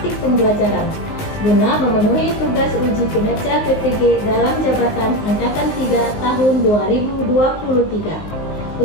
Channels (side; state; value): right; late; 19 ms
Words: pembelajaran guna memenuhi tugas uji kinerja PPG dalam jabatan Angkatan 3 tahun 2023.